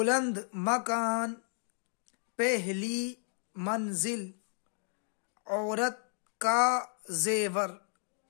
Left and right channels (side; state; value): right; silent; 56 dB below the other